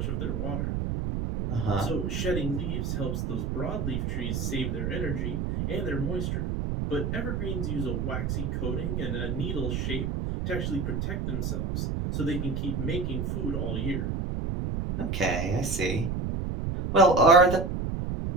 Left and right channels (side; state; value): right; noise; rumble, 1 dB below the sound